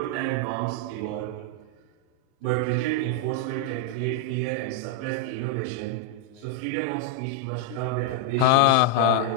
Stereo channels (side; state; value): both; different; correlation 0.00